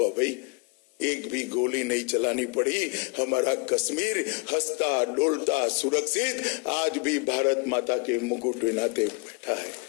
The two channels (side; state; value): right; quieter; 31.4 dB